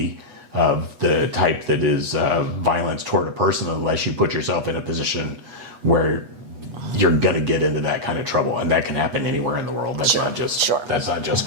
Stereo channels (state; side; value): late; left; 8.2 ms